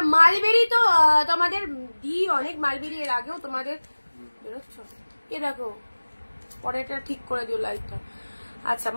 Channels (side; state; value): both; inverted; correlation -1.00